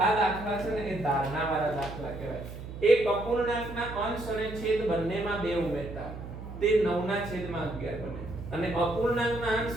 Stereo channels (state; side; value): noise; right; hum, 11 dB below the sound